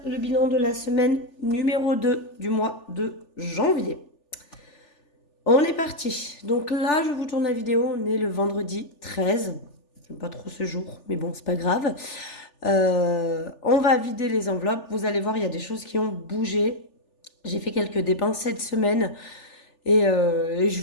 le bilan de la semaine numéro 2 du mois de janvier. On est parti. Donc là, je vous tourne la vidéo, on est le vendredi 13. J'aime pas trop ce jour, mais bon, c'est pas grave. On va vider les enveloppes. Vous allez voir, il y a des choses qui ont bougé. J'ai fait quelques dépenses cette semaine et je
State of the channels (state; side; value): late; right; 3.4 ms